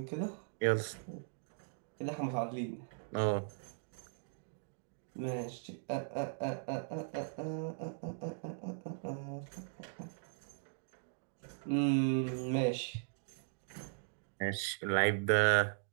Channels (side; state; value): left; silent; digital silence